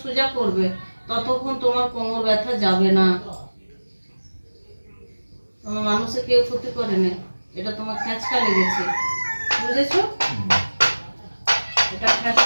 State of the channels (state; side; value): inverted; both; correlation -1.00